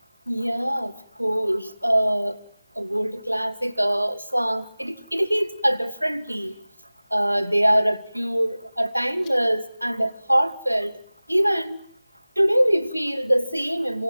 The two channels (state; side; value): inverted; both; correlation -0.99